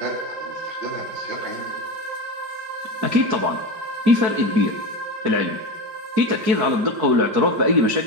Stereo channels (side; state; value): left; late; 4.7 ms